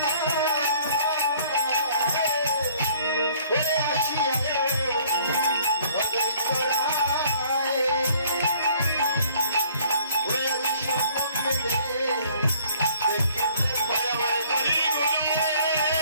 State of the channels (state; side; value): inverted; both; correlation -0.57